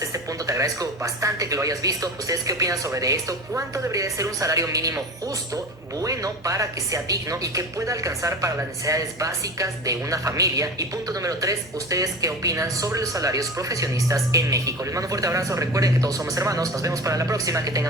este punto te agradezco bastante que lo hayas visto. ¿Ustedes qué opinan sobre esto? ¿Cuánto debería de ser un salario mínimo justo, bueno, para que sea digno y que pueda alcanzar para las necesidades básicas de una familia? Y punto número 3, ¿ustedes qué opinan sobre los salarios profesionistas en México? Les mando un fuerte abrazo, recuerden que todos somos hermanos. Nos vemos para la próxima, que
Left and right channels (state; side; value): normal; both; correlation 0.30